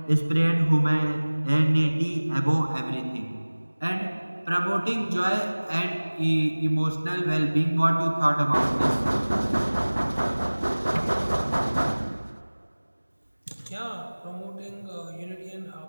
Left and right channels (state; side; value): inverted; both; correlation -1.00